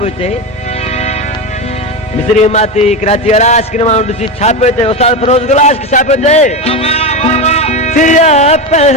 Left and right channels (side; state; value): both; normal; correlation 0.17